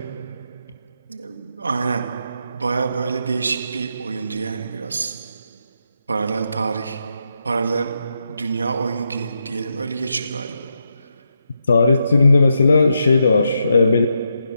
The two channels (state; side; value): inverted; both; correlation -0.83